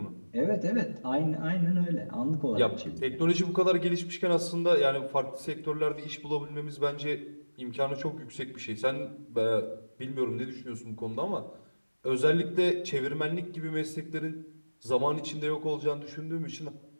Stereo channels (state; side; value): inverted; both; correlation -1.00